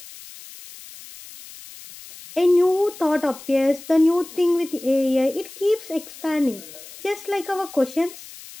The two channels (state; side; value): noise; left; hiss, 17 dB below the sound